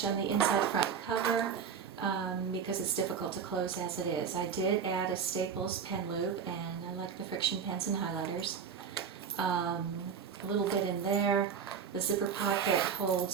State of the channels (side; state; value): left; quieter; 6.8 dB